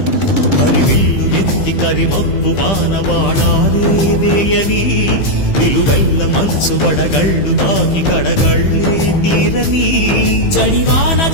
హరివిల్లు ఎత్తి కరిమబ్బు వానవాడాలే వేయని నిలువెల్ల మంచు వడగళ్ళు తాకి కడగళ్ళే తీరని జడివాన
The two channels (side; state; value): right; late; 15 ms